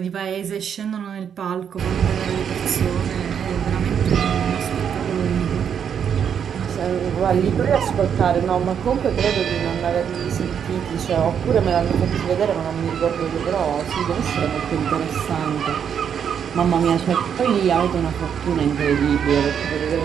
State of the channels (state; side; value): quieter; left; 7.9 dB